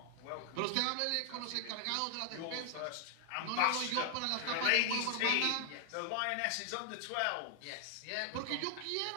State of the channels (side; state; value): both; different; correlation 0.00